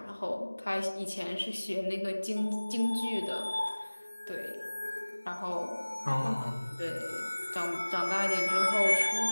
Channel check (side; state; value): both; inverted; correlation -1.00